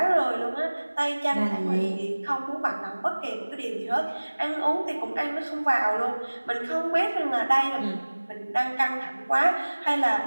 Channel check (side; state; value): both; inverted; correlation -1.00